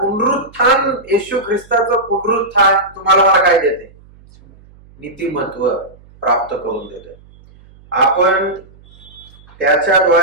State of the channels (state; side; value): noise; right; hum, 26 dB below the sound